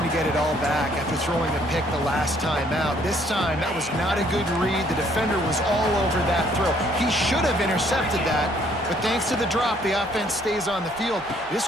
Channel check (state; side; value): normal; both; correlation 0.64